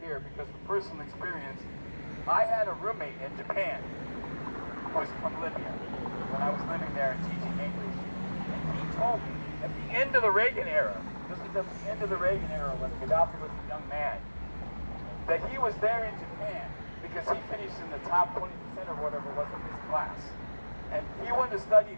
because from personal experience, I had a roommate in Japan who was from Libya when I was living there and teaching English. And he told me at the end of the Reagan era, this was at the end of the Reagan era when Gaddafi was a young man, that he was there in Japan because he finished in the top 20% or whatever it was of his class. And he wanted to study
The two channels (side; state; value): both; inverted; correlation -1.00